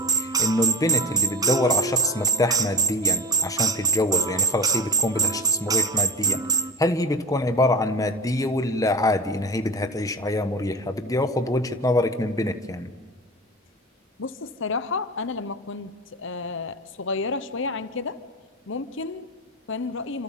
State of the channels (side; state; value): both; normal; correlation 0.28